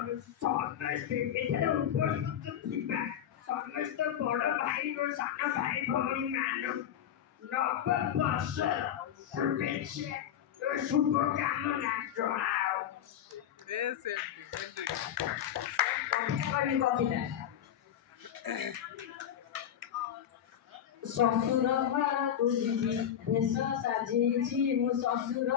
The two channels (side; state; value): right; quieter; 10.0 dB